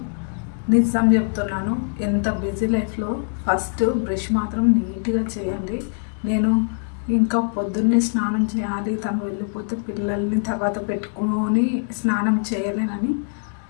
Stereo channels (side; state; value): right; silent; 62 dB below the other